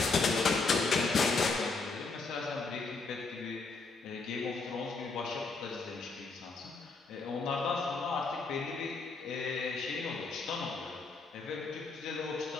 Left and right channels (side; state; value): right; quieter; 4.1 dB